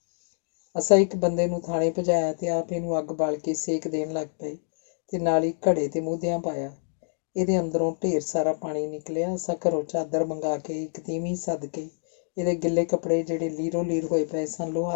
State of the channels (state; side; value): silent; right; digital silence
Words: ਅਸਾਂ ਇੱਕ ਬੰਦੇ ਨੂੰ ਥਾਣੇ ਭਜਾਇਆ ਤੇ ਆਪ ਇਹਨੂੰ ਅੱਗ ਬਾਲ ਕੇ ਸੇਕ ਦੇਣ ਲੱਗ ਪਏ ਤੇ ਨਾਲ ਹੀ ਘੜੇ ਤੇ ਮੂਧਿਆਂ ਪਾਇਆ। ਇਹਦੇ ਅੰਦਰੋਂ ਢੇਰ ਸਾਰਾ ਪਾਣੀ ਨਿਕਲਿਆ। ਅਸਾਂ ਘਰੋਂ ਚਾਦਰ ਮੰਗਾ ਕੇ ਇੱਕ ਤੀਵੀਂ ਸੱਦ ਕੇ ਇਹਦੇ ਗਿੱਲੇ ਕੱਪੜੇ ਜਿਹੜੇ ਲੀਰੋ ਲੀਰ ਹੋਏ ਪਏ ਸਨ